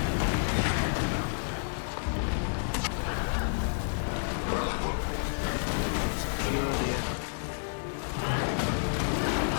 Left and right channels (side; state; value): right; silent; digital silence